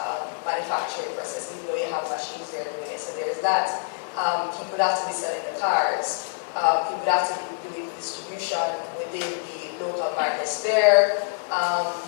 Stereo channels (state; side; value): silent; right; digital silence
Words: manufacturing process, even though you have machines there doing it. So there's that. People would have to be selling the cars. People would have to be doing the distribution within the local markets there.